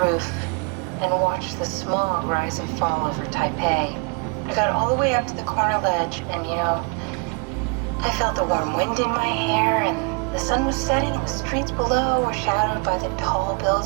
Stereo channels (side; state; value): left; quieter; 33.5 dB